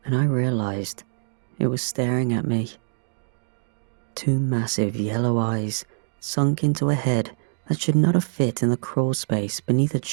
and I realized it was staring at me. Two massive yellow eyes sunk into a head that should not have fit in the crawl space beneath a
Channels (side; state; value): left; silent; digital silence